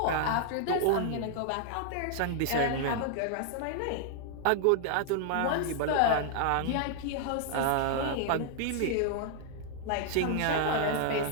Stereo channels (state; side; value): different; both; correlation 0.00